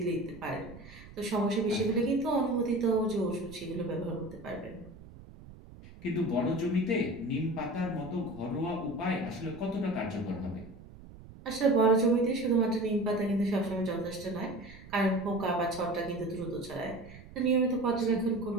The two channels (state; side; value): noise; right; rumble, 18 dB below the sound